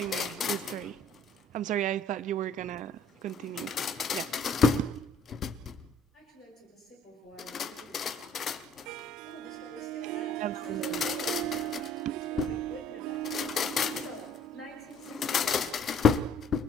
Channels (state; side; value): normal; both; correlation 0.57